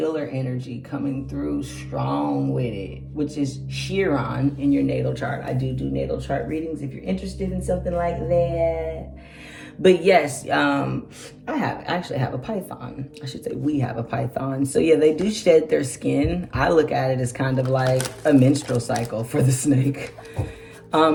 energy coming through strong with it, which is Chiron in your natal chart. I do natal chart readings if you're interested in something like that. But yes, I actually have a python. I should say we have a python. So yeah, they do shed their skin. I look at it as kind of like a menstrual cycle for the snake.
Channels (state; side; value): identical; both; correlation 1.00